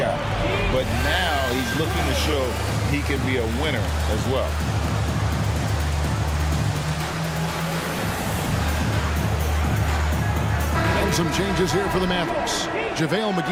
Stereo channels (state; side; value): identical; both; correlation 1.00